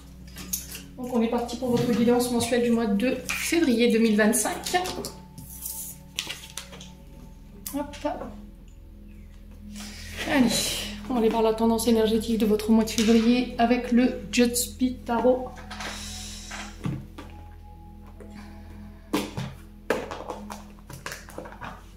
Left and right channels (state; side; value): identical; both; correlation 1.00